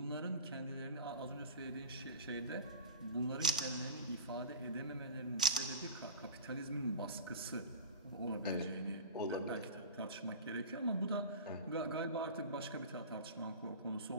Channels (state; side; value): inverted; both; correlation -0.31